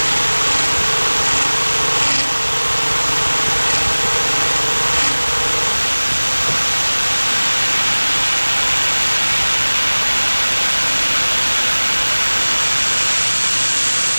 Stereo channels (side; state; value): both; inverted; correlation -1.00